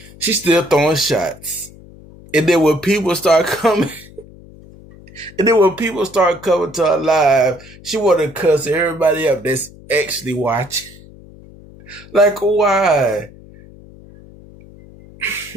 She's still throwing shots. And then when people start coming, coming to her live, she want to cuss everybody up that's actually watching. Like, why?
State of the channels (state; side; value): noise; left; hum, 21 dB below the sound